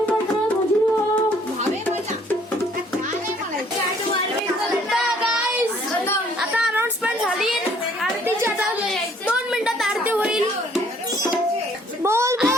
मंडळात हजर व्हा. आता अनाउन्समेंट झाली. आरतीची आता 2 मिनिटात आरती होईल.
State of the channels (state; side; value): normal; both; correlation 0.61